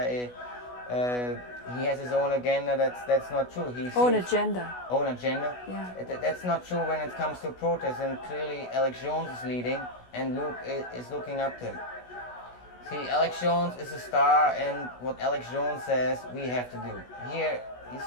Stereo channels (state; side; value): late; right; 16 ms